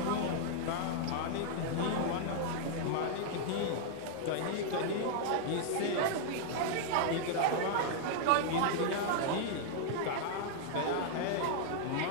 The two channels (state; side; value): different; both; correlation 0.00